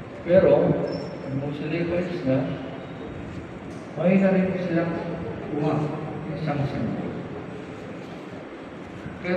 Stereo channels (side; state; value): both; identical; correlation 1.00